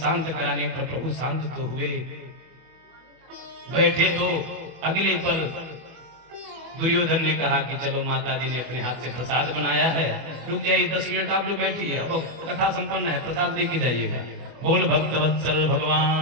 कराने पर प्रभु शांत तो हुए। बैठे तो अगले पल दुर्योधन ने कहा कि चलो माता जी ने अपने हाथ से प्रसाद बनाया है, रुक जाइए 10 मिनट आप लोग बैठिए, अब कथा संपन्न है, प्रसाद लेके जाइएगा। बोल भक्त वत्सल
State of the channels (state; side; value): late; left; 24 ms